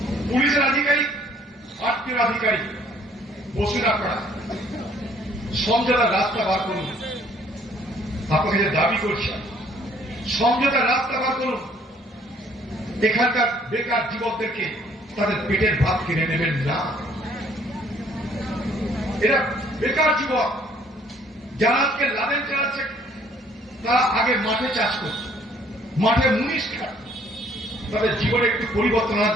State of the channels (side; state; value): both; normal; correlation 0.61